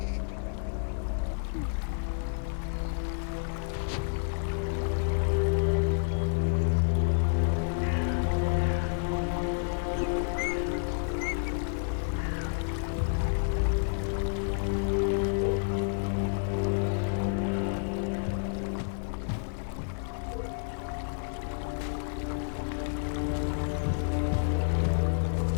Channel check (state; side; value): silent; right; 58 dB below the other